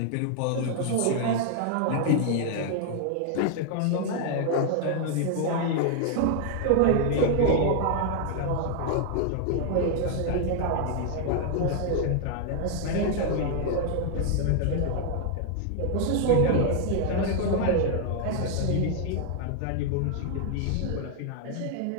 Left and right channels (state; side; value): different; both; correlation 0.00